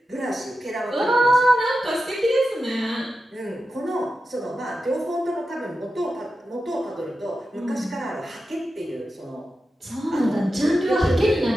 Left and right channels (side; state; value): both; normal; correlation 0.91